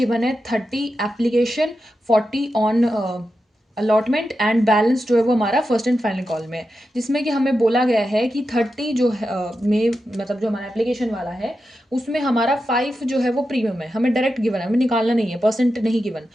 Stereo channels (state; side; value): normal; both; correlation 0.89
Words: है 30 application, 40 on allotment, and balance जो है वो हमारा फर्स्ट एंड फाइनल कॉल में है। जिसमें कि हमें बोला गया है कि 30 जो है में, मतलब जो हमारा एप्लीकेशन वाला है उसमें हमारा 5 जो है वो प्रीमियम है। हमें डायरेक्ट गिवन है, हमें निकालना नहीं है, परसेंट नहीं गिवन।